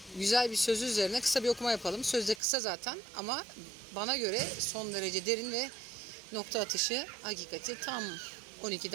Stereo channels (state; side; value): drops out; left; at 2.4 s